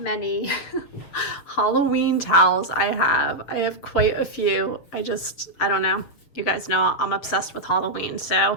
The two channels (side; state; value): right; late; 6.9 ms